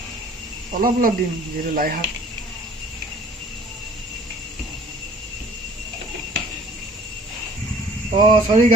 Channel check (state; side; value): normal; both; correlation 0.52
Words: অলপ দিম যিহেতু লাই শাক। চৰি